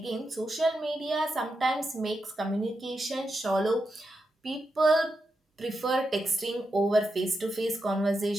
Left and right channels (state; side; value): normal; both; correlation 0.86